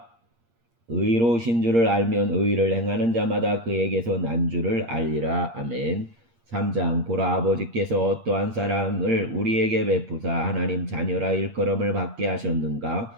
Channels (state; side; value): late; left; 8.7 ms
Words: 의로우신 줄을 알면 의를 행하는 자마다 그에게서 난 줄을 알리라. 아멘. 3장 보라 아버지께서 어떠한 사랑을 우리에게 베푸사 하나님 자녀라 일컬음을 받게 하셨는가.